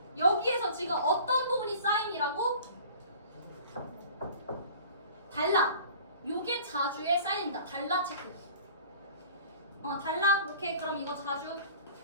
여기에서 지금 어떤 부분이 사인이라고? 달라. 요게 자주에 쌓인다. 달라 체크. 달라. 오케이. 그럼 이거 자주.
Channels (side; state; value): both; inverted; correlation -0.45